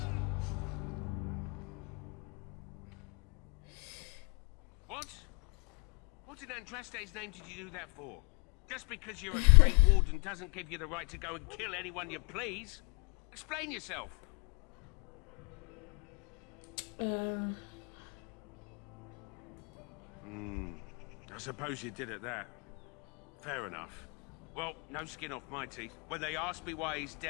What? What in Andraste's name did you do that for? Just because you're a Grey Warden doesn't give you the right to go and kill anyone you please. Explain yourself. I suppose you did at that. Fair enough. Well, no skin off my teeth. When they ask me why he's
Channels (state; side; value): quieter; right; 38.0 dB